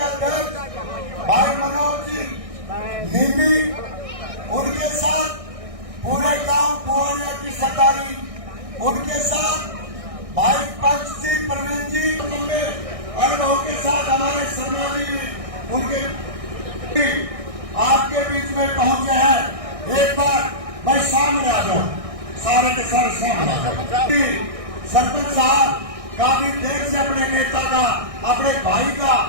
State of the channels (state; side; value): late; left; 1.6 ms